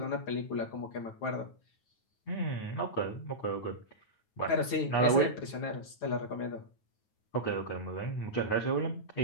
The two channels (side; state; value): right; late; 9.3 ms